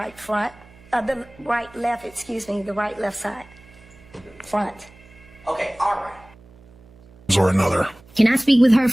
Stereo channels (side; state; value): right; noise; hum, 25 dB below the sound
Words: front, the right left, excuse me, the right left side. Front. Okay, all right. Or another. Can I speak with her